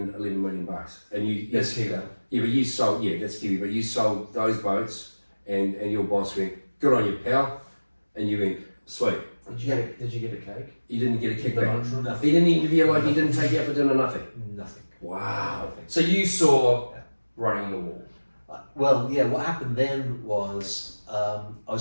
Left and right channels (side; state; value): both; inverted; correlation -1.00